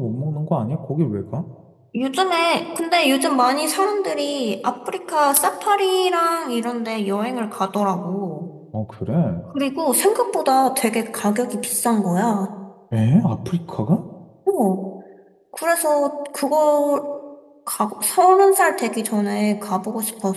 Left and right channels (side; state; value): both; identical; correlation 1.00